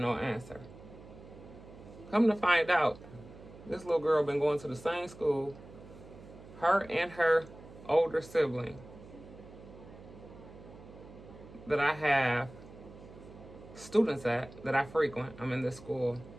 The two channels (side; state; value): right; noise; hum, 18 dB below the sound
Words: answer. Come to find out, this little girl been going to the same school, her and her older sibling, that I have students at, that I frequent. I'm in this school